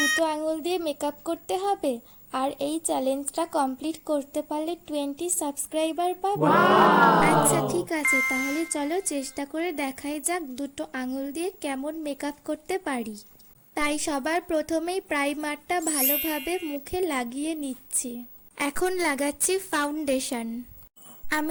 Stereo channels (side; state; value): both; identical; correlation 1.00